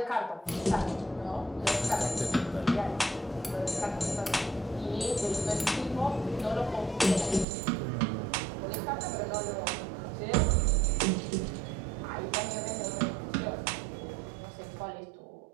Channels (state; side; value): drops out; left; at 7.5 s